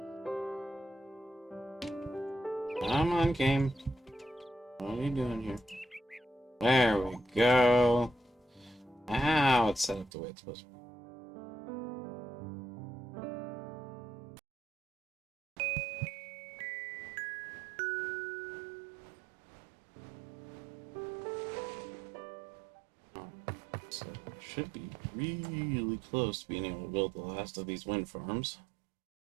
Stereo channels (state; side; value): drops out; left; at 10.1 s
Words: Come on, game. What are you doing here? There we go. Now it's set up the way it's supposed to be. So should be really close to being able to build the last of these wind farms.